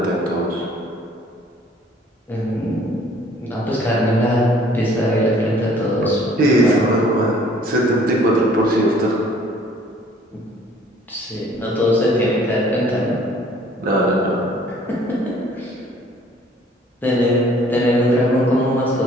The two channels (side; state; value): both; normal; correlation 0.57